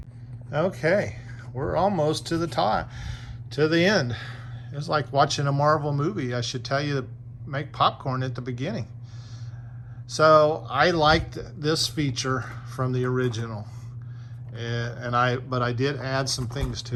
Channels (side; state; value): both; identical; correlation 1.00